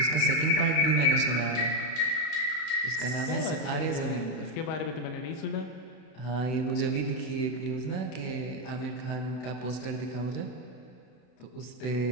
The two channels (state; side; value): late; right; 32 ms